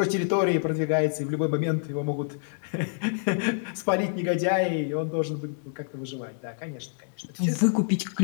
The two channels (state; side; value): silent; right; 60 dB below the other